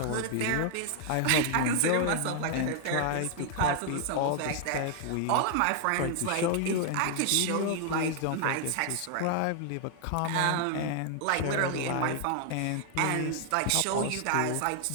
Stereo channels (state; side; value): different; both; correlation 0.00